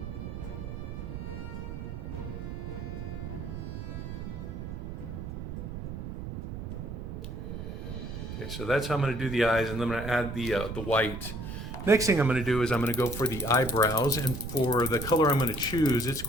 Okay, so that's how I'm going to do the eyes, and then I'm going to add the white. Next thing I'm going to do is I'm going to go for the eyebrows, and for the color I'm going to choose, it's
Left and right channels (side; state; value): right; noise; rumble, 7 dB below the sound